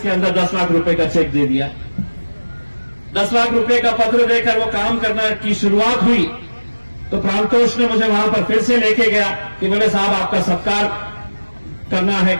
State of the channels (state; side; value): inverted; both; correlation -1.00